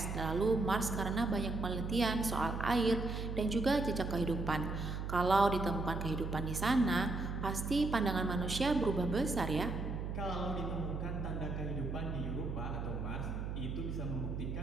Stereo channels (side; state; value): right; noise; hum, 4 dB below the sound